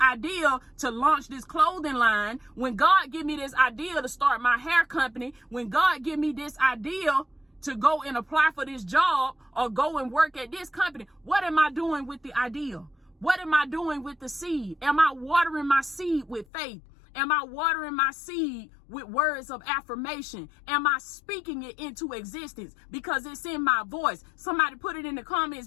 to launch this clothing line, when God give me this idea to start my hair company, when God give me this idea to go and apply for this job or go and work at this company. What am I doing with the idea? What am I doing with the seed? Am I watering my seed with faith? Am I watering my seed with words of affirmation? Am I speaking it into existence? Because it's in my voice. Somebody put it in the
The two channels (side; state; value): right; drops out; at 16.4 s